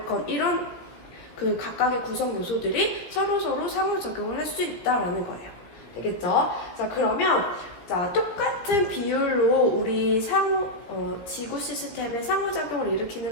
이런 그 각각의 구성 요소들이 서로서로 상호작용을 할 수 있다라는 거예요. 되겠죠? 자, 그러면 자, 똑같은 비율로 우리 지구 시스템의 상호작용을 일으키는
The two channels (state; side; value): late; right; 17 ms